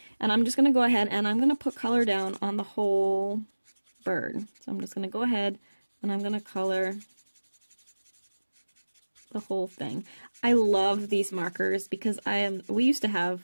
And I'm just going to go ahead and I'm going to put color down on the whole bird. So I'm just going to go ahead and I'm going to color the whole thing. I love these markers because we used to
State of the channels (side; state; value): both; inverted; correlation -1.00